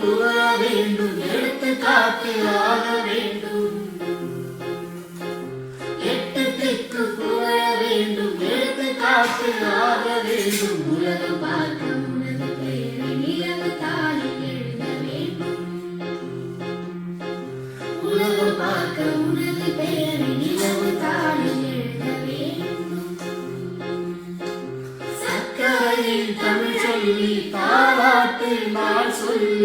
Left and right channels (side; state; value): both; identical; correlation 1.00